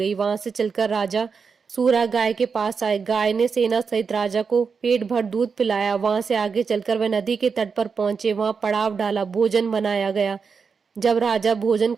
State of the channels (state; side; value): quieter; left; 5.6 dB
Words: वहां से चलकर राजा सूरा गाय के पास आए। गाय ने सेना सहित राजा को पेट भर दूध पिलाया। वहां से आगे चलकर वह नदी के तट पर पहुंचे। वहां पड़ाव डाला, भोजन बनाया गया। जब राजा भोजन